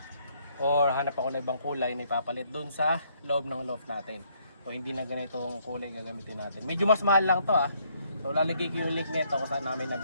Or hanap ako na ibang kulay na ipapalit dun sa loob ng loft natin. So hindi na ganitong kulay gagamitin natin. Medyo mas mahal lang to ah. So lalagay ko yung link nito kung saan namin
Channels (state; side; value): inverted; both; correlation -0.69